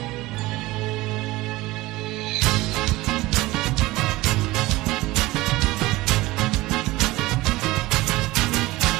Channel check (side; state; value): left; quieter; 19.3 dB